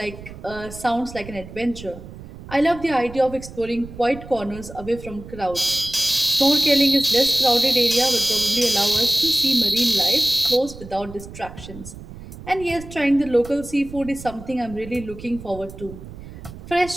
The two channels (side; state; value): right; noise; rumble, 15 dB below the sound